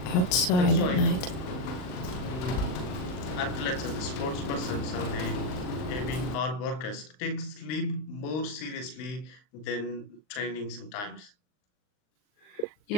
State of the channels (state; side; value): late; right; 39 ms